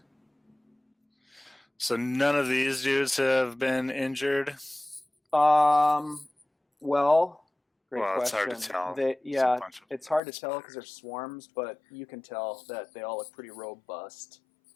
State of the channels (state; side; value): drops out; right; at 10.2 s